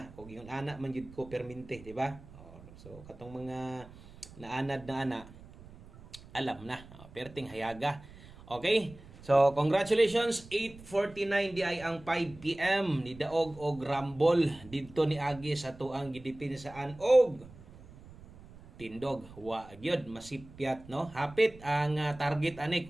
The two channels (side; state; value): right; noise; rumble, 19 dB below the sound